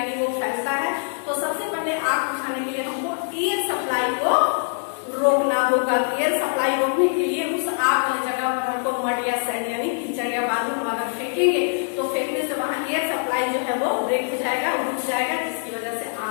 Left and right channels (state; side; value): silent; right; digital silence